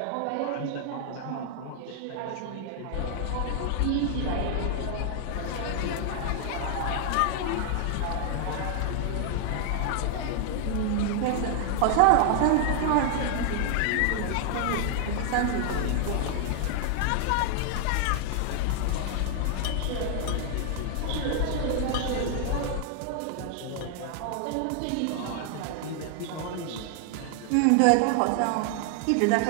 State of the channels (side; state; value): both; different; correlation 0.00